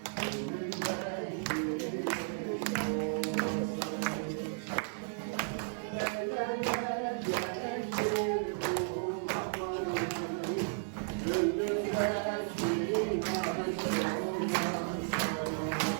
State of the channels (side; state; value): left; silent; digital silence